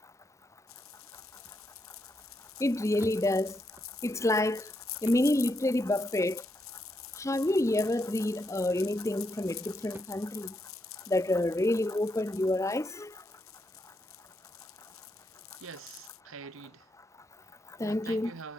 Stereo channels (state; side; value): normal; both; correlation 0.80